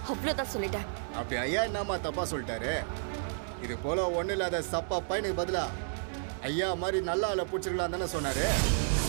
அவ்வளவுதான் சொல்லிட்டேன். அப்படி ஐயா என்னம்மா தப்பா சொல்லிட்டாரு? இது போல ஒண்ணு இல்லாத சப்பா பையனுக்கு பதிலா ஐயா மாதிரி நல்ல ஆளை பிடிச்சிருக்கலாம் தானே சொன்னாரு.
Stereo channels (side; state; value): left; silent; 57 dB below the other